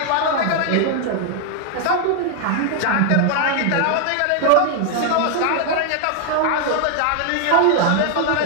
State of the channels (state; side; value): different; both; correlation 0.00